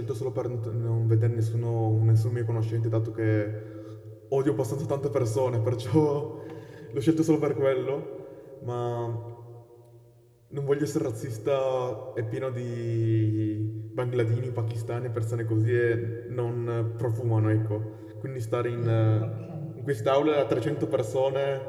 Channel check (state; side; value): identical; both; correlation 1.00